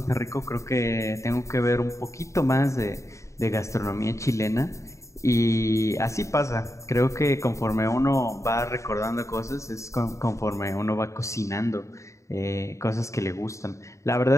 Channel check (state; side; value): late; right; 0.14 ms